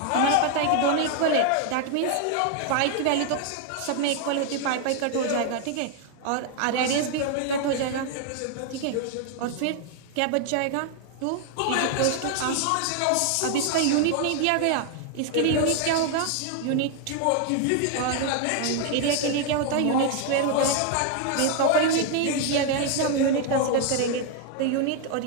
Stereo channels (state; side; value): different; both; correlation 0.00